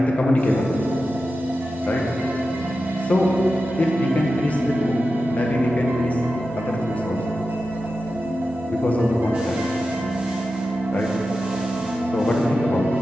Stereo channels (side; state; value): both; normal; correlation 0.92